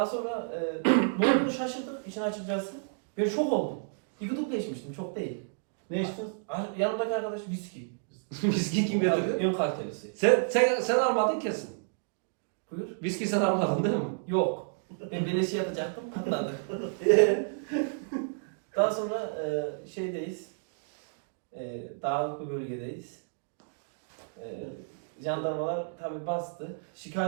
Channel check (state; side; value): silent; left; digital silence